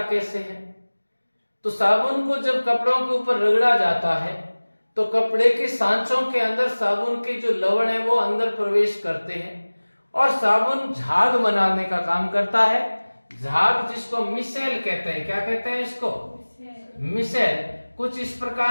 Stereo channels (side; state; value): both; inverted; correlation -1.00